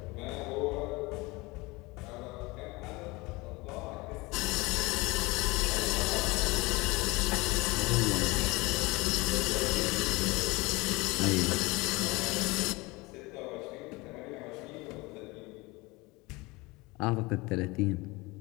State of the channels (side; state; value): right; quieter; 23.6 dB